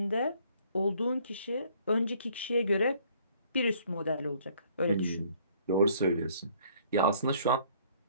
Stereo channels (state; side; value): inverted; both; correlation -0.60